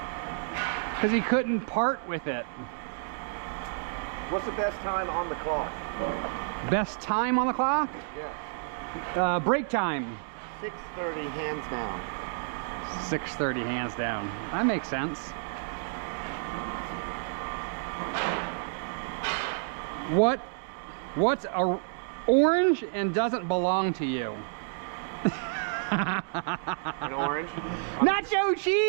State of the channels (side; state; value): left; silent; digital silence